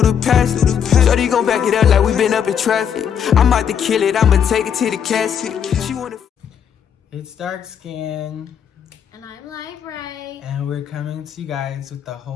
the past. Shorty gon' back it up like we been up in traffic. I'm about to kill it, I'ma take it to the casket. She wanna. It's Dark Skin, and I'm Live Ray, and we're coming to you guys with a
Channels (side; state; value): right; quieter; 8.1 dB